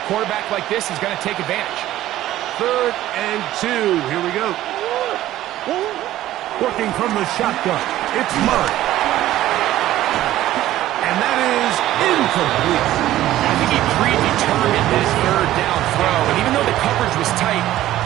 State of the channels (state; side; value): quieter; left; 14.2 dB